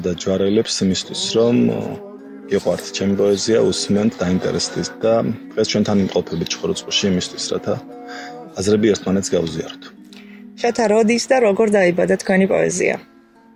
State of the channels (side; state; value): both; identical; correlation 1.00